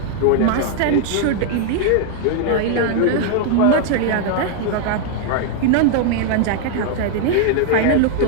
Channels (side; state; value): both; different; correlation 0.00